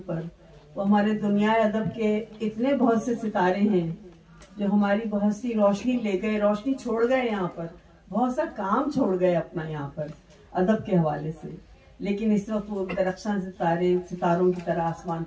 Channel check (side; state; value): both; identical; correlation 1.00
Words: पर, वो हमारे दुनिया अदब के इतने बहुत से सितारे हैं जो हमारी बहुत सी रोशनी ले गए, रोशनी छोड़ गए, यहाँ पर बहुत सा काम छोड़ गए अपना यहाँ पर अदब के हवाले से, लेकिन इस वक्त वो दरख्शां सितारों की तरह आसमान